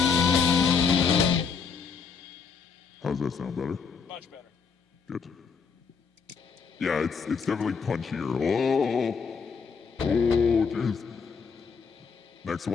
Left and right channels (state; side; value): quieter; right; 5.7 dB